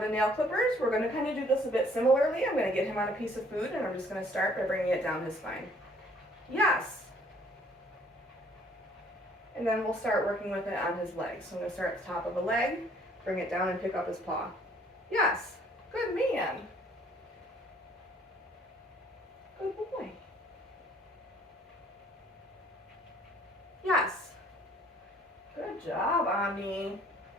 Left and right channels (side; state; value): both; normal; correlation 0.60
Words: nail clippers, we're going to kind of do this a bit similarly. I'm going to get him on a piece of food, and I'm just going to start by bringing it down his spine. Yes. And then we'll start working with it on his legs. So I'm going to start at the top of the leg, bring it down and pick up his paw. Yes, good man. Good boy. Yes. Good job, Omni.